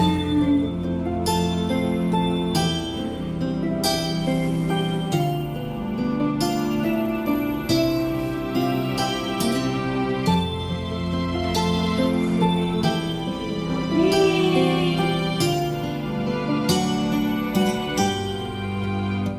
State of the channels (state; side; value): identical; both; correlation 1.00